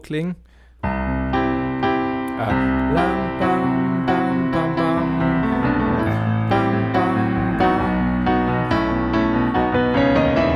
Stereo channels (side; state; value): both; identical; correlation 1.00